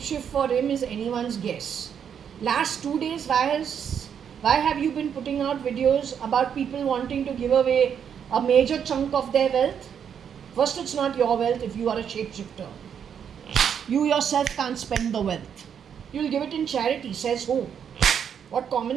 for him is anyone's guess. Last 2 days, why have you been putting out videos about people wanting to give away a major chunk of their wealth? First, it's not your wealth if you are a shapeshifter. You yourself can't spend the wealth. You'll give it in charity, says who? What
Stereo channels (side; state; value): left; quieter; 8.0 dB